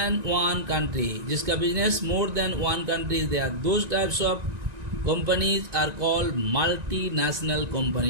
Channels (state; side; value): late; left; 1.9 ms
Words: one country. जिसका business more than one country there. Those types of companies are called multinational